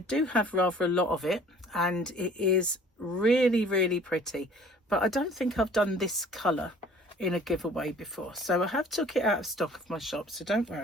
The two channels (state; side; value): normal; both; correlation 0.51